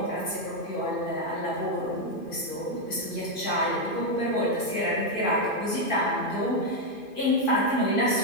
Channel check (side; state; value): right; late; 2.5 ms